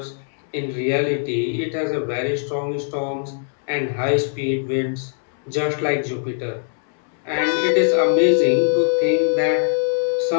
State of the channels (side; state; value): right; silent; 65 dB below the other